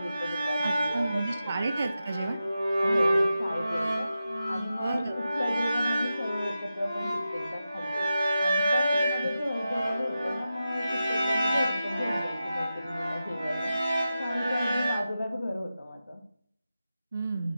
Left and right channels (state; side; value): inverted; both; correlation -0.91